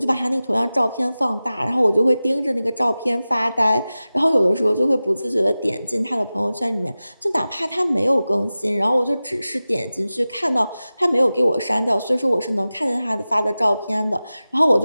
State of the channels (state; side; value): inverted; both; correlation -0.96